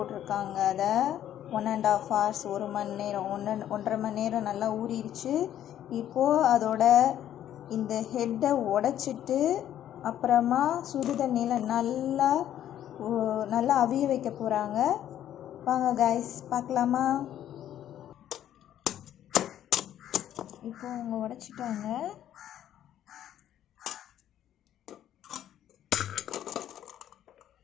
அதை 1.5 hours, 1 மணி நேரம், 1.5 மணி நேரம் நல்லா ஊறிடுச்சு. இப்போது அதோட இந்த ஹெட்டை உடச்சிட்டு அப்புறமா சுடு தண்ணியில் நல்லா அவிய வைக்க போகிறாங்க. வாங்க கைஸ் பார்க்கலாமா? இப்போ அவங்க உடச்சிட்டாங்க.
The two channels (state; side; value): quieter; right; 11.2 dB